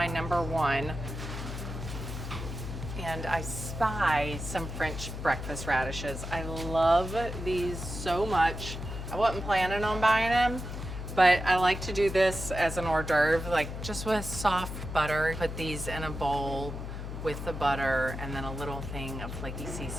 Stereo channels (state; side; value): noise; left; hum, 7 dB below the sound